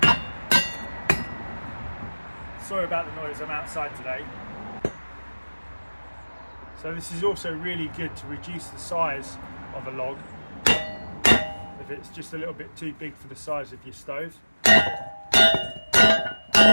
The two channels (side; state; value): both; inverted; correlation -1.00